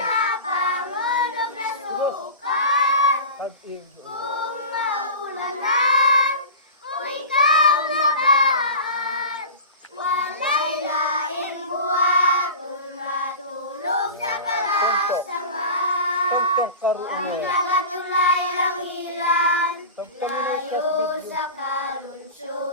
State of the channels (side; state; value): both; inverted; correlation -0.32